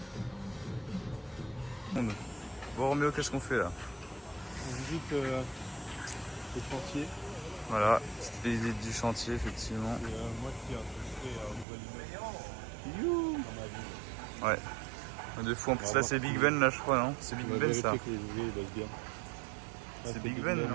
plus belle. Bon, Roméo, qu'est-ce qu'on fait là? On visite le chantier. Voilà, petite visite du chantier, effectivement. Et moi qui ai un nouvel immeuble dans ma ville. Ouais. De fou, en plus là c'est Big Ben là je crois, non? C'est Big On va Ben ça. vérifier que les ouvriers ils bossent bien. Là, C'est Big Ben,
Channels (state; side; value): drops out; left; at 11.7 s